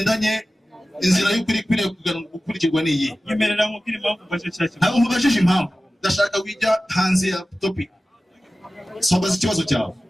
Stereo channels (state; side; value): normal; both; correlation 0.96